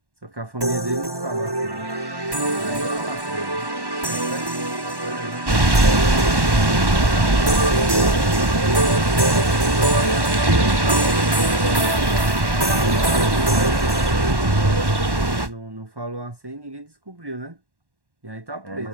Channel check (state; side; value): late; left; 1.1 ms